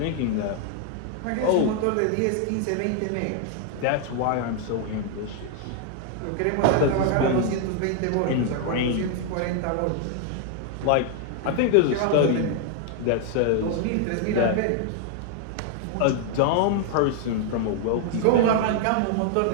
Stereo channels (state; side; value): different; both; correlation 0.00